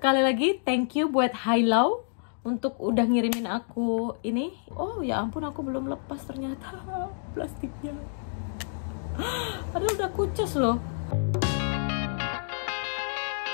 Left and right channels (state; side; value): silent; right; digital silence